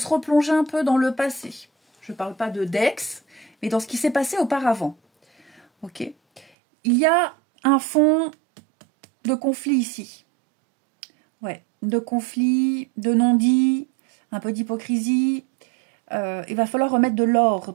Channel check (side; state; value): left; drops out; at 6.5 s